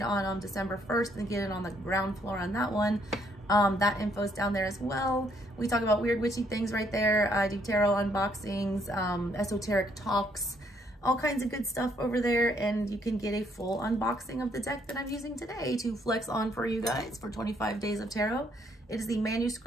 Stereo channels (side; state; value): both; normal; correlation 0.69